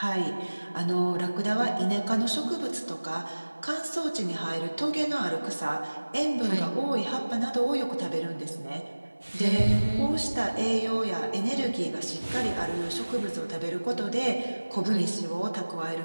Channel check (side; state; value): both; inverted; correlation -1.00